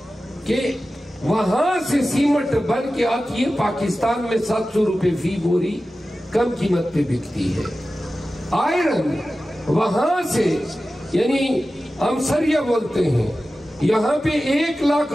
کہ وہاں سے سیمنٹ بن کے آتی ہے، پاکستان میں 700 روپے فی بوری کم قیمت پہ بکتی ہے۔ آئرن وہاں سے، یعنی ہم سریا بولتے ہیں، یہاں پہ 1 لاکھ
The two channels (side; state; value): both; normal; correlation 0.94